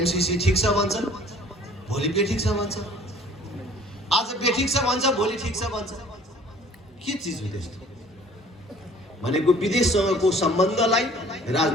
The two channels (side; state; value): both; normal; correlation 0.52